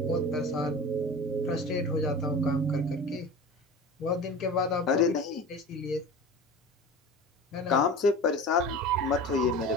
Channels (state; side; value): normal; both; correlation 0.34